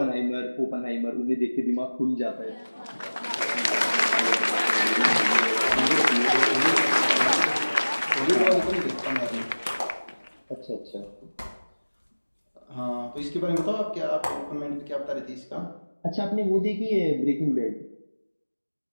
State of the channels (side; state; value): both; inverted; correlation -1.00